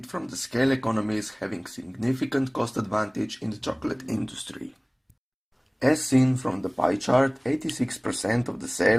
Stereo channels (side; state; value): both; identical; correlation 1.00